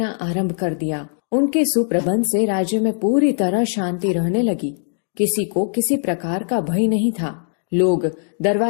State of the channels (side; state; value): right; silent; digital silence